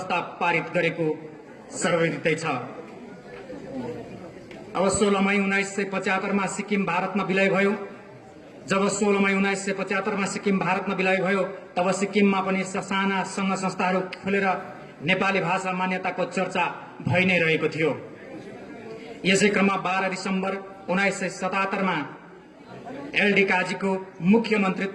पारित गरेको सर्वविदितै छ। अब 16 मई 1975 मा सिक्किम भारतमा विलय भयो। जब 16 मई 1975 मा सिक्किम भारतमा विलय भयो तब सिक्किममा पनि साना संघ संस्थाहरू खोलेर नेपाली भाषा मान्यताको चर्चा भइ नै रहेको थियो। यसै क्रममा 12 दिसम्बर 1977 मा एलडी काजीको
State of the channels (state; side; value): identical; both; correlation 1.00